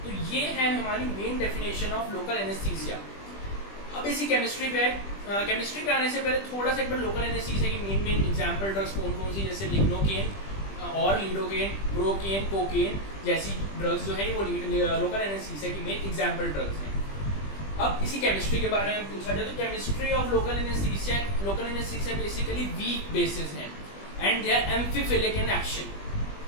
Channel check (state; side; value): late; right; 20 ms